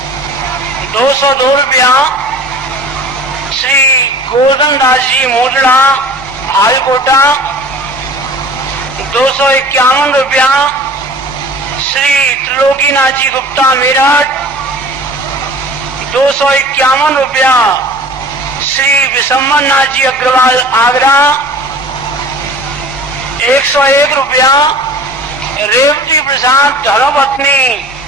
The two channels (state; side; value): normal; both; correlation 0.43